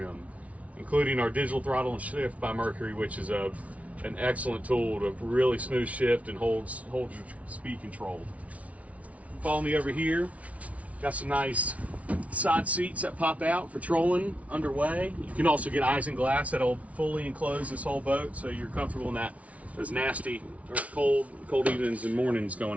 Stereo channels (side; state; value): left; late; 0.067 ms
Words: including our digital throttle and shift by Mercury, which is an excellent tool to really smooth shift and holds your speed control. Follow me over here. Got some nice side seats that pop out for trolling underway. You can also get eyes and glass that'll fully enclose this whole boat, so you're comfortable in those nasty or cold evenings and mornings